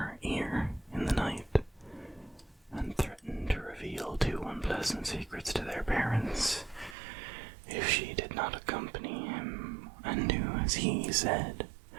ear in the night, and threatened to reveal two unpleasant secrets to their parents if she did not accompany him and do as he said.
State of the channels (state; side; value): drops out; left; at 7.0 s